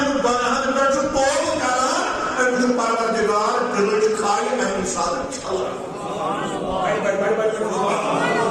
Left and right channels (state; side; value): identical; both; correlation 1.00